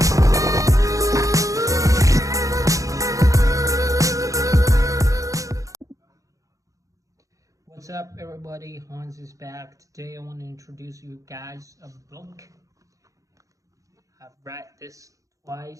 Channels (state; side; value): late; left; 0.16 ms